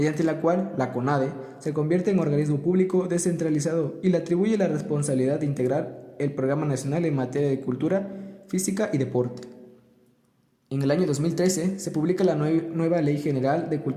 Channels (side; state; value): both; identical; correlation 1.00